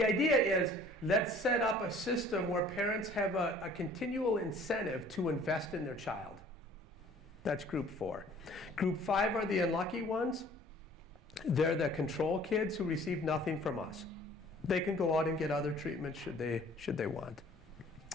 idea is, let's set up a system where parents have a continual incentive to invest in their child. That's group 4. Group 5 are the unlucky ones. They're the control kids who receive nothing from us. They can go out and get other treatments should they want.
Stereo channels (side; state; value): both; normal; correlation 0.52